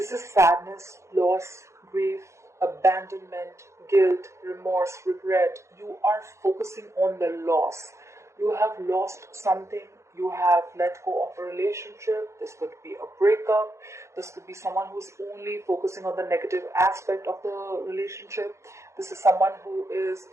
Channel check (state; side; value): late; left; 0.14 ms